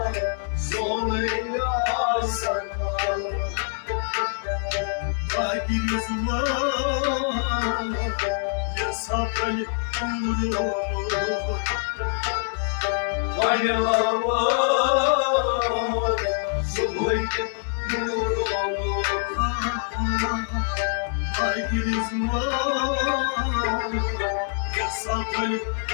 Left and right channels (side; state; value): right; silent; 58 dB below the other